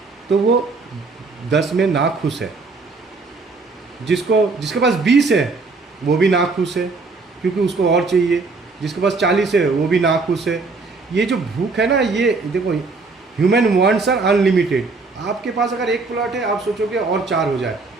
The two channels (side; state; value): left; quieter; 3.9 dB